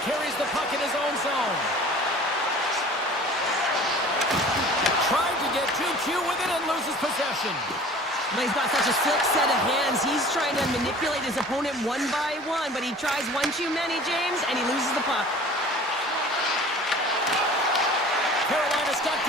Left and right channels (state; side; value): normal; both; correlation 0.45